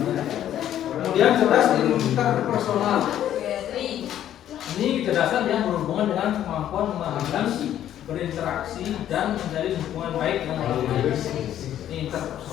Kemudian cerdas interpersonal. Ini kecerdasan yang berhubungan dengan kemampuan memahami, berinteraksi dan menjalin hubungan baik dengan orang lain. Ini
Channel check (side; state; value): right; quieter; 11.3 dB